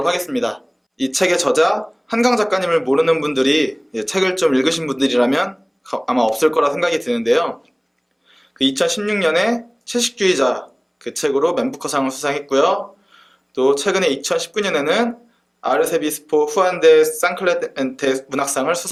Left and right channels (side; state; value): both; identical; correlation 1.00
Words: 하겠습니다. 이 책의 저자 한강 작가님을 모르는 분들이 책을 좀 읽으신 분들이라면 아마 없을 거라 생각이 드는데요. 2016년에 채식주의자 그 책으로 맨부커상을 수상했고요. 또 최근에 2019년에는 아르세비스포 후안데 산클레멘테 문학상을